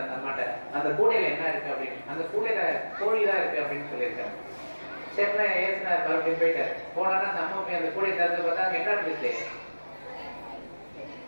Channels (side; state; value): both; inverted; correlation -1.00